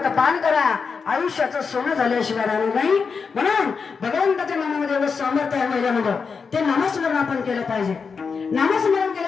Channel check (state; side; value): quieter; right; 5.4 dB